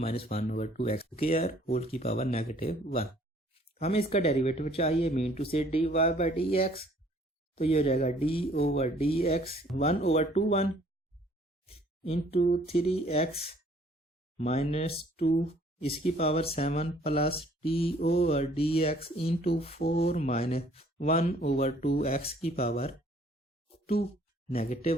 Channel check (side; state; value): both; normal; correlation 0.59